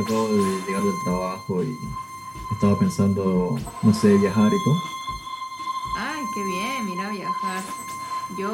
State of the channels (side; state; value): both; identical; correlation 1.00